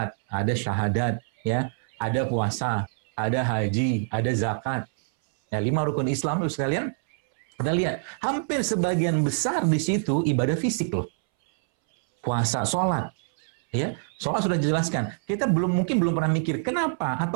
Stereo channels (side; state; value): left; silent; 61 dB below the other